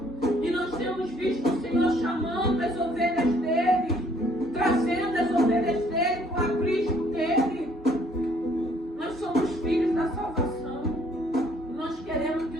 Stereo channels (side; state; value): both; normal; correlation 0.63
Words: E nós temos visto o Senhor chamando as ovelhas dele, trazendo as ovelhas dele para o aprisco dele. Nós somos filhos da salvação. Nós queremos que